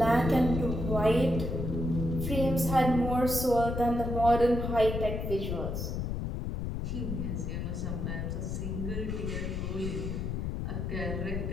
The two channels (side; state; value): left; noise; rumble, 2 dB below the sound